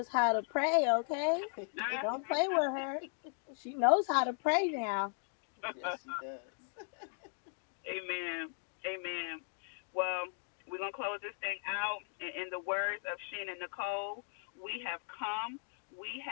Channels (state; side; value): silent; right; 53 dB below the other